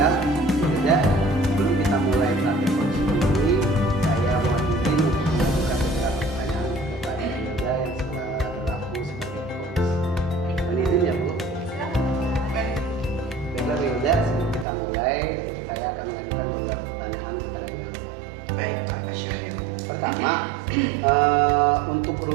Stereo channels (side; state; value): left; drops out; at 14.7 s